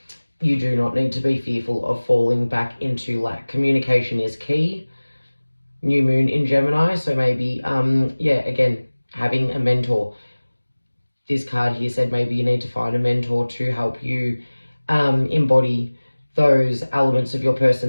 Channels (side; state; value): both; inverted; correlation -1.00